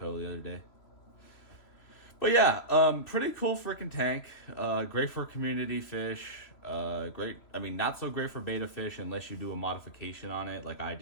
the other day. But yeah, pretty cool freaking tank. Great for community fish. Great. I mean, not so great for beta fish unless you do a modification on it, like I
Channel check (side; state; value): right; late; 3.0 ms